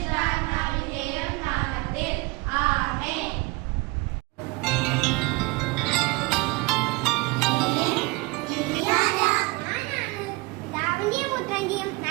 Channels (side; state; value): left; quieter; 24.5 dB